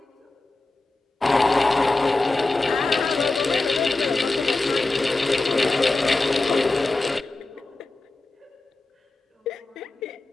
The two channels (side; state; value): right; quieter; 3.1 dB